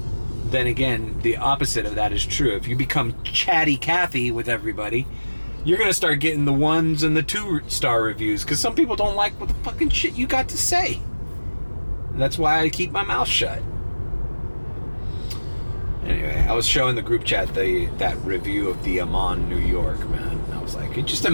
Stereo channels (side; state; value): both; inverted; correlation -1.00